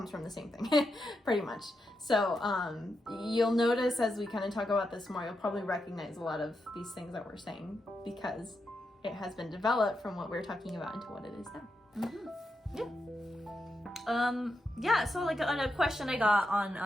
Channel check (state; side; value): normal; both; correlation 0.85